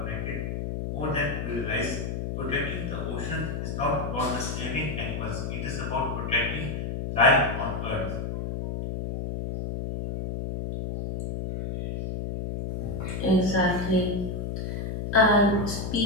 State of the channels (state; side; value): noise; left; hum, 3 dB below the sound